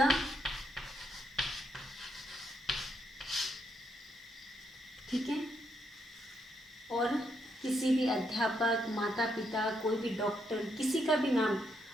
ठीक है। और किसी भी अध्यापक, माता पिता, कोई भी डॉक्टर, किसी का भी नाम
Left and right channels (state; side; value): normal; both; correlation 0.78